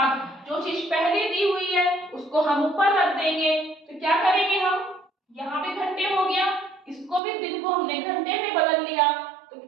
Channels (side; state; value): left; drops out; at 7.2 s